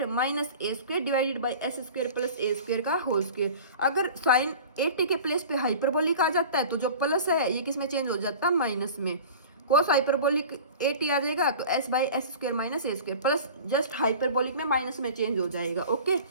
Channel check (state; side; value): inverted; both; correlation -0.39